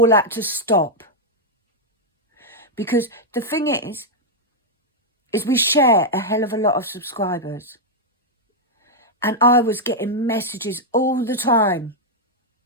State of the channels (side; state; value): both; normal; correlation -0.03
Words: had to stop. Because the thing is we share a hell of a lot of subscribers. And I was getting messages all the time